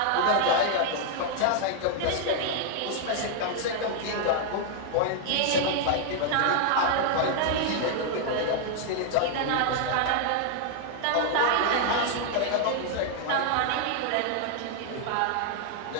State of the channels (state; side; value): different; both; correlation 0.00